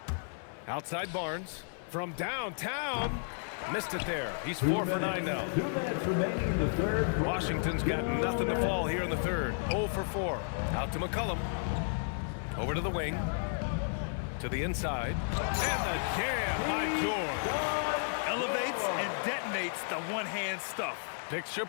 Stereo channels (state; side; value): silent; right; 56 dB below the other